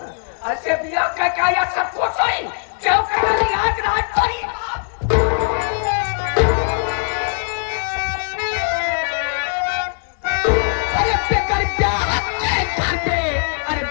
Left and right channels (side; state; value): right; silent; digital silence